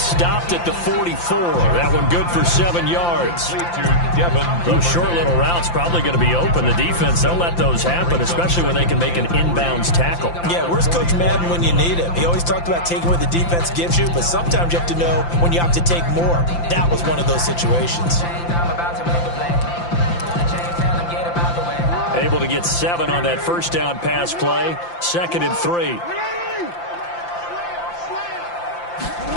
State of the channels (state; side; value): late; right; 5.8 ms